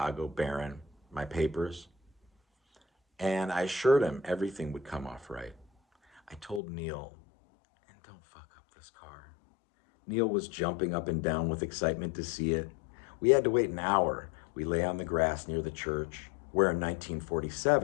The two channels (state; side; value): drops out; right; at 6.6 s